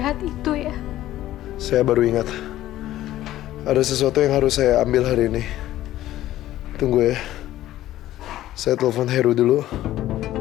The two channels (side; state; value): right; quieter; 14.2 dB